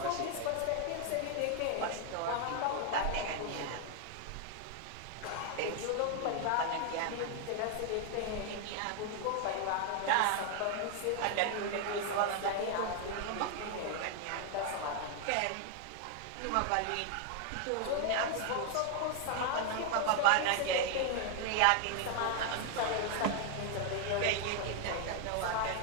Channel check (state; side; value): different; both; correlation 0.00